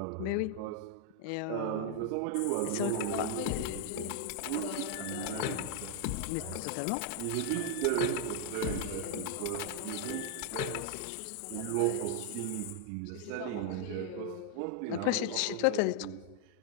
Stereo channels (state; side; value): different; both; correlation 0.00